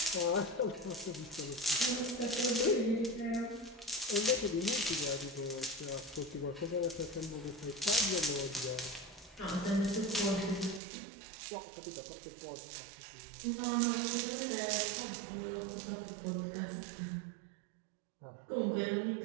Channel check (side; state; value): left; drops out; at 10.8 s